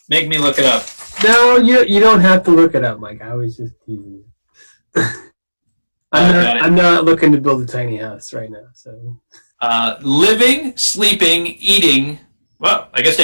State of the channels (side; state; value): both; inverted; correlation -1.00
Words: make me look it up. No, you don't have to look it up, Mike. I was just teasing you. I'm not looking to build a tiny house right now. So, living, sleeping, eating. Well, I guess